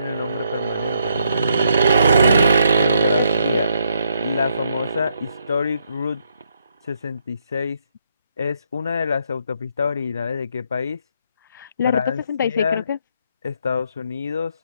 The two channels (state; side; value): inverted; both; correlation -0.75